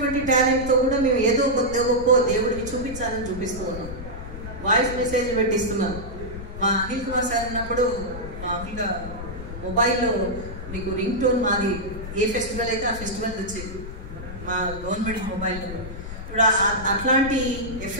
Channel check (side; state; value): left; noise; rumble, 10 dB below the sound